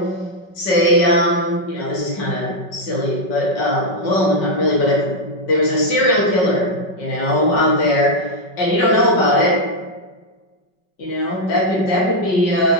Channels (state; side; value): late; right; 5.3 ms